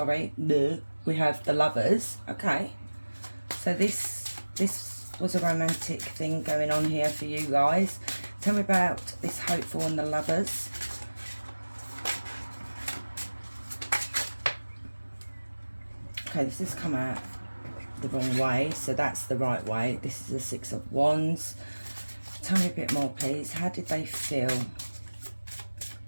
We have the Lovers. Okay. So this was a romantic thing going on here for you guys. Tell me about this hopeful and the Lovers. Okay, this has come out the wrong way, so that's the right way. This is the 6 of Wands. Tell me a bit more, please. How did they feel?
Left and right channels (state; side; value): inverted; both; correlation -1.00